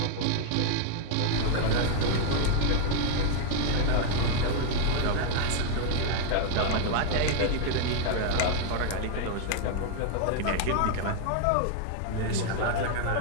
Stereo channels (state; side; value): different; both; correlation 0.00